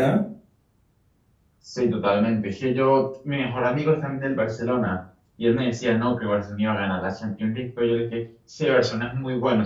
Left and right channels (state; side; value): identical; both; correlation 1.00